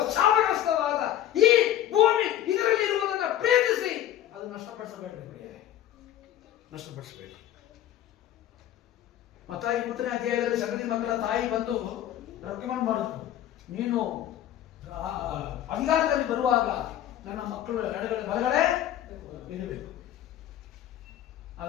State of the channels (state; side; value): quieter; right; 12.0 dB